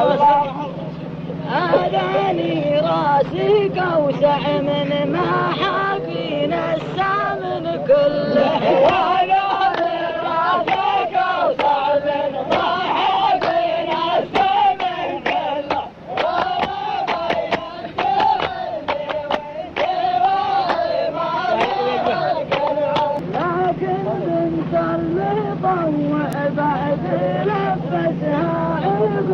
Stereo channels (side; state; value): both; identical; correlation 1.00